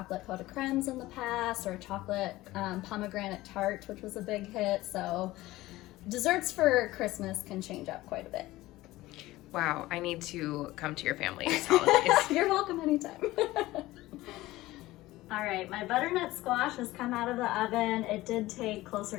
pot de crèmes in the past, or a chocolate pomegranate tart, which was a big hit. So desserts for Christmas can change up quite a bit. Wow, I need to come to your family's holidays. You're welcome anytime. All right, my butternut squash has come out of the oven. It did take closer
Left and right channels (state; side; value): quieter; right; 17.7 dB